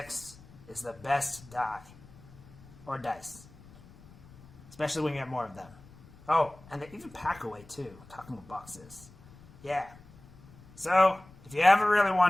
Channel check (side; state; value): left; noise; rumble, 22 dB below the sound